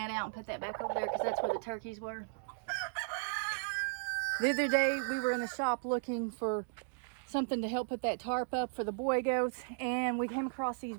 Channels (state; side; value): silent; left; digital silence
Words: out and put that back over there because that's where the turkeys were. The other day we were in the shop looking for something to help put that tarp up for the boy goats, and we came across these